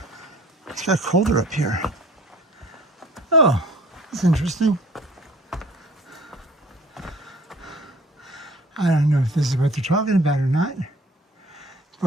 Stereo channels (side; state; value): both; normal; correlation 0.50